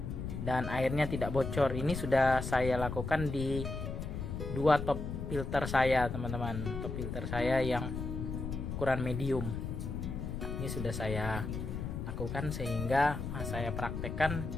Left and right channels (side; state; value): left; noise; rumble, 5 dB below the sound